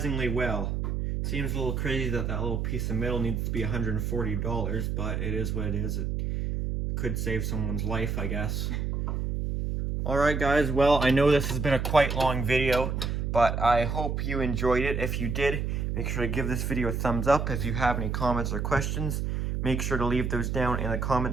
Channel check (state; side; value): noise; right; hum, 1 dB below the sound